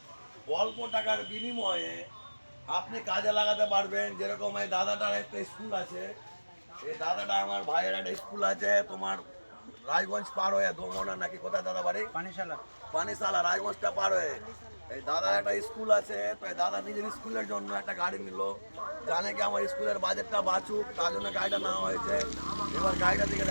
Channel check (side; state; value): both; inverted; correlation -1.00